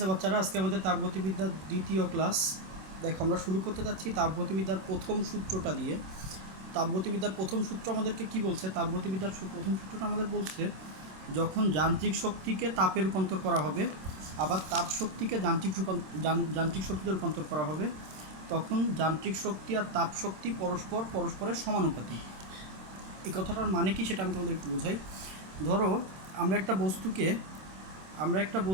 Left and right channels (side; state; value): left; late; 26 ms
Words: বাচ্চারা, আজকে আমাদের তাপগতিবিদ্যার দ্বিতীয় ক্লাস। দেখো, আমরা শুরু করতে যাচ্ছি তাপগতিবিদ্যার প্রথম সূত্রটা দিয়ে। তাপগতিবিদ্যার প্রথম সূত্র আমাদেরকে কি বলছে? তাপগতিবিদ্যার প্রথম সূত্রটা আমাদের বলছে, যখন যান্ত্রিক শক্তিকে তাপে রূপান্তর করা হবে, আবার তাপ শক্তিকে যান্ত্রিক শক্তিতে রূপান্তর করা হবে, তখন যান্ত্রিক শক্তি আর তাপ শক্তি পরস্পরের সমানুপাতিক। এই কথাটার মানে কি সেটা আমি তোমাদের একটু বোঝাই। ধরো, আমরা একটা